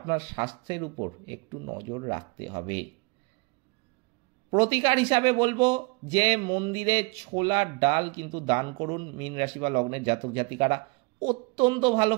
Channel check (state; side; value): quieter; left; 28.9 dB